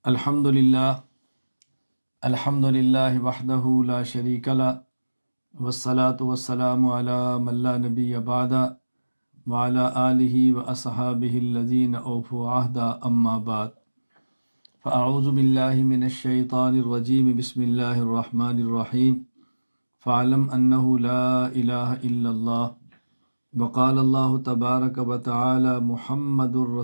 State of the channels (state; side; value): inverted; both; correlation -1.00